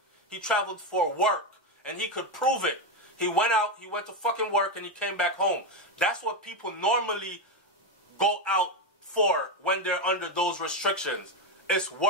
He traveled for work. And he could prove it. He went out, he went to fucking work, and he came back home. That's what people normally go out for when they're under those restrictions. It's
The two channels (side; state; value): both; normal; correlation 0.10